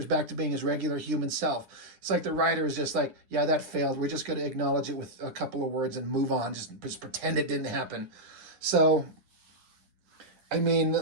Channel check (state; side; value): late; left; 9.8 ms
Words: back to being his regular human self. It's like the writer is just like, yeah, that failed. We're just going to acknowledge it with a couple of words and move on. Just pretend it didn't happen. So, I mean,